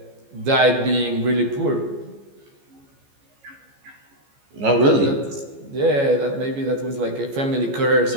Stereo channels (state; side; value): late; left; 14 ms